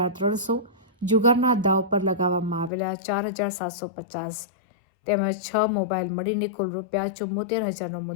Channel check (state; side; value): drops out; right; at 2.7 s